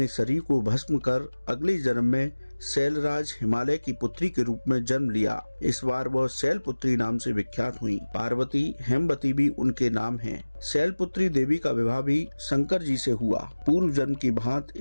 शरीर को भस्म कर अगले जन्म में शैलराज हिमालय की पुत्री के रूप में जन्म लिया। इस बार वह शैलपुत्री नाम से विख्यात हुई। पार्वती, हेमवती भी उनके नाम हैं। शैलपुत्री देवी का विवाह भी शंकर जी से हुआ। पूर्व जन्म की भांति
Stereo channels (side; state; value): both; inverted; correlation -1.00